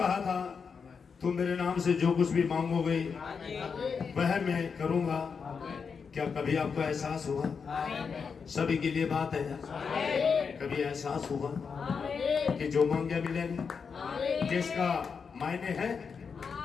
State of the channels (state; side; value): quieter; right; 5.8 dB